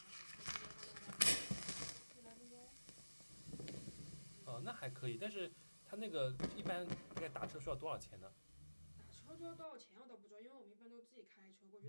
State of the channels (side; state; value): both; inverted; correlation -1.00